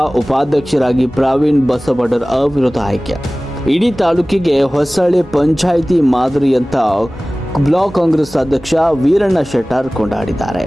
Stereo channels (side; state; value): both; normal; correlation 0.98